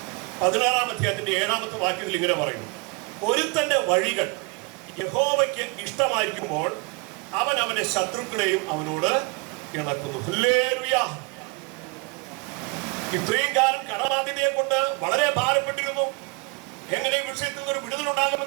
16-ാം അധ്യായത്തിന്റെ 7-ാമത്തെ വാക്യത്തിൽ ഇങ്ങനെ പറയുന്നു, ഒരുത്തന്റെ വഴികൾ യഹോവയ്ക്ക് ഇഷ്ടമായിരിക്കുമ്പോൾ അവൻ അവന്റെ ശത്രുക്കളെയും അവനോട് ഇണക്കുന്നു. ഹല്ലേലൂയ. ഇത്രയും കാലം കടബാധ്യതയെ കൊണ്ട് വളരെ ഭാരപ്പെട്ടിരുന്നു. എങ്ങനെ വിഷയത്തിൽ നിന്ന് ഒരു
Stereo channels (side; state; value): left; quieter; 29.3 dB